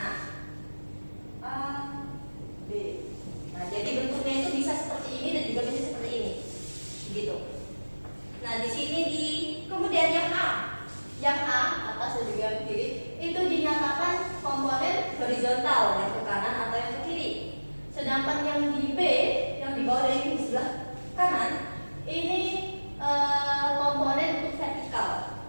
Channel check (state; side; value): inverted; both; correlation -1.00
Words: A, B. Nah, jadi bentuknya itu bisa seperti ini dan juga bisa seperti ini, gitu. Nah, di sini kemudian yang A atas dan juga yang kiri itu dinyatakan komponen horizontal yang ke kanan atau yang ke kiri. Sedangkan yang di B, yang di bawah dari di sebelah kanan, ini komponen untuk vertikal